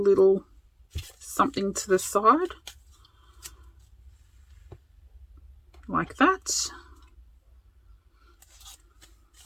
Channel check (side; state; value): both; identical; correlation 1.00